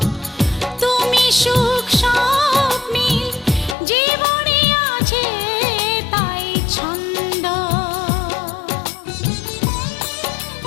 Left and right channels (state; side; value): drops out; right; at 3.8 s